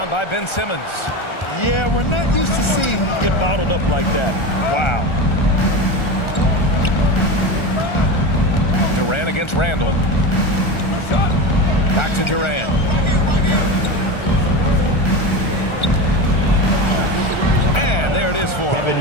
by Ben Simmons. Yeah, we're not used to seeing him get bottled up like that. Wow. Durant against Randle. Back to Durant. And there it is for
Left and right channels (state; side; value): late; right; 1.3 ms